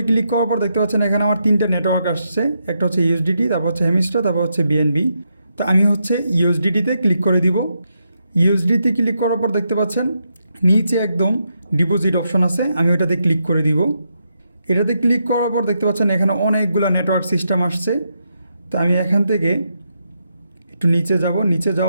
ক্লিক করার পর দেখতে পাচ্ছেন এখানে আমার 3টা নেটওয়ার্ক আসছে, একটা হচ্ছে ইউএসডিটি, তারপর হচ্ছে হেমিস্টার, তারপর হচ্ছে বিএনবি। তো আমি হচ্ছে ইউএসডিটিতে ক্লিক করে দিব। ইউএসডিতে ক্লিক করার পর দেখতে পাচ্ছেন নিচে একদম ডিপোজিট অপশন আছে, আমি ওটাতে ক্লিক করে দিব। এটাতে ক্লিক করার পর দেখতে পাচ্ছেন এখানে অনেকগুলো নেটওয়ার্ক সিস্টেম আসছে। তো আমি এখান থেকে একটু নিচে যাব, নিচে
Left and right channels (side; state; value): both; inverted; correlation -0.82